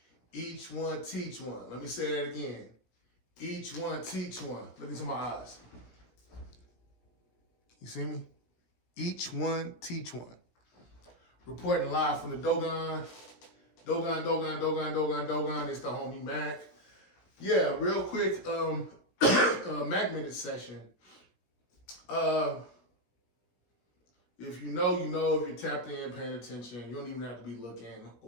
Each one teach one. Let me say that again. Each one teach one. Look into my eyes. You see me? Each one teach one. Reporting live from the Dogon. Dogon. It's the homie MACK. Yeah, real quick, MACK minute session. If you know, you know. If you're tapped in, paying attention, you don't even have to be looking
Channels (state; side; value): late; right; 17 ms